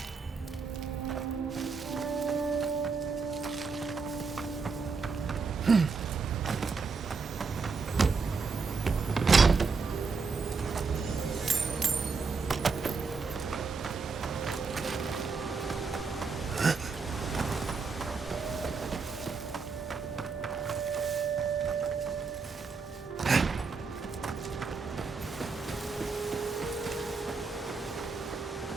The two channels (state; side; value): quieter; left; 4.7 dB